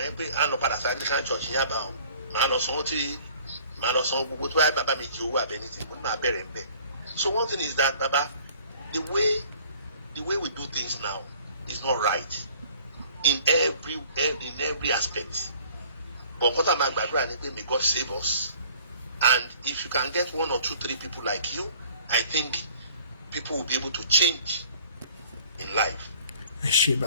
yẹn pé à ń lọ padà sí Anglican church yẹn àbá o màá lọ sanwó gbogbo tó bá bàbá mi jí owó abẹ́ni tí mo ní máa bẹ̀rẹ̀ bẹ́ẹ̀. So one thing is that baba the way we do things now is not right in every aspect. But what I'm gbàdúrà ni pé may God save us, and if you can get 1 or 2, 3 people like you, I think people will be able to change in life.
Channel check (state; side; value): inverted; both; correlation -0.53